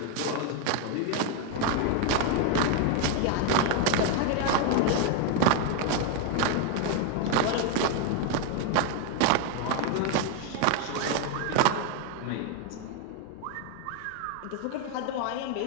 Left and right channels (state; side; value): different; both; correlation 0.01